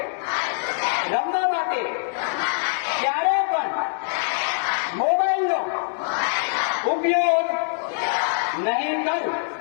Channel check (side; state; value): right; silent; digital silence